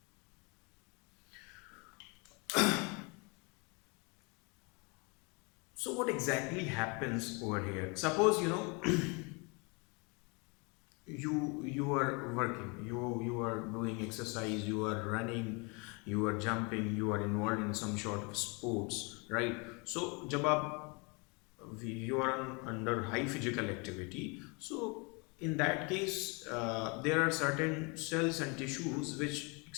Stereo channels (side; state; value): right; quieter; 30.9 dB